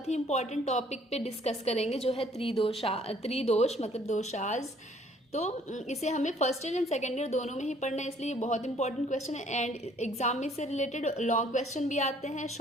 ही इंपॉर्टेंट टॉपिक पे डिस्कस करेंगे जो है त्रिदोष मतलब दोषाज। तो इसे हमें first year and second year दोनों में ही पढ़ना है, इसलिए ये बहुत इंपॉर्टेंट क्वेश्चन है। एंड एग्जाम में से रिलेटेड लॉन्ग क्वेश्चन भी आते हैं,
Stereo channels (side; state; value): both; normal; correlation 0.60